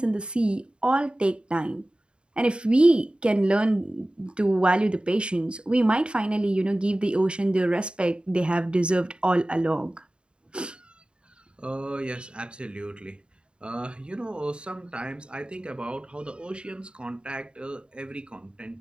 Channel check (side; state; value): left; late; 0.053 ms